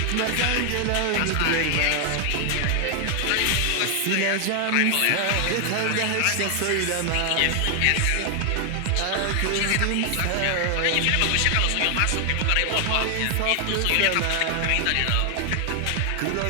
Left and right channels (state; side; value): different; both; correlation 0.00